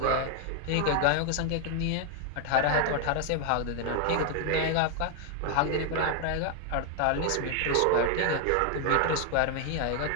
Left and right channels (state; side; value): different; both; correlation 0.00